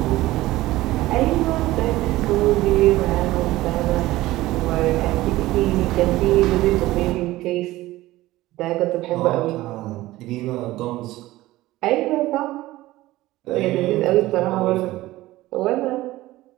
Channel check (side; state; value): left; quieter; 17.2 dB